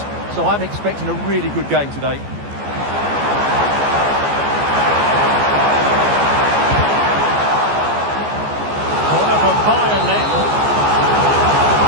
so I'm expecting a really good game today. Corner for Bayern then.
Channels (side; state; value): left; late; 14 ms